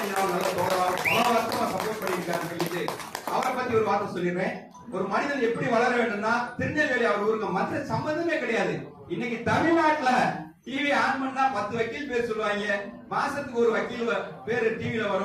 நல்ல தோழராக பல வருஷமா சப்போர்ட் பண்ணியிருக்காரு சொல்லிட்டு அவரை பத்தி ஒரு வார்த்தை சொல்லிடுறேன். ஒரு மனிதன் எப்படி வளர வேண்டும்னா, திருநெல்வேலி அவர் ஊருக்கு மற்ற சம்பந்தமே கிடையாது. இன்னைக்கு தமிழ்நாட்டுல டிவி ஆன் பண்ணா 10 வக்கீல் பேர் சொல்லுவாங்க. மாசத்துக்கு ஒரு வக்கீல் பேரு டிவில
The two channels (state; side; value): identical; both; correlation 1.00